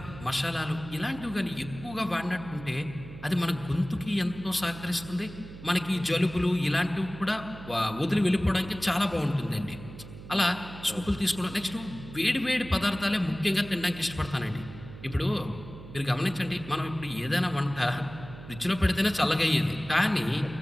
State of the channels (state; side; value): noise; right; hum, 14 dB below the sound